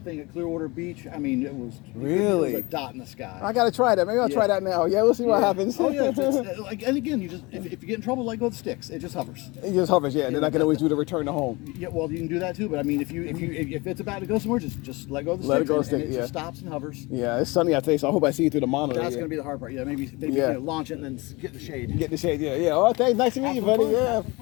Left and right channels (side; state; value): right; quieter; 24.5 dB